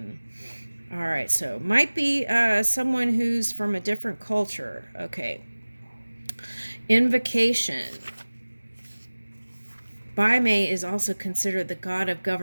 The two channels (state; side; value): inverted; both; correlation -1.00